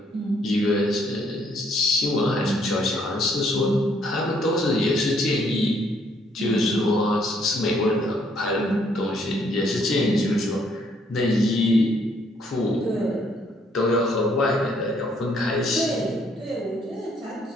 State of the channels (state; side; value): normal; both; correlation 0.68